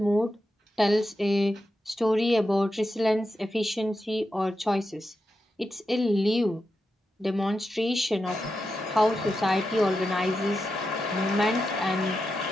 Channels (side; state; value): both; normal; correlation 0.88